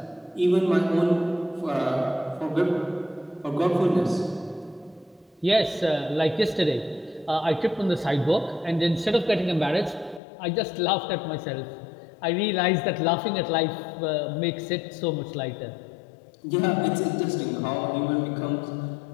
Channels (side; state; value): right; drops out; at 10.2 s